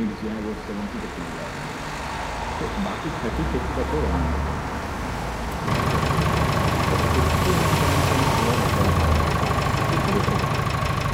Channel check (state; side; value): identical; both; correlation 1.00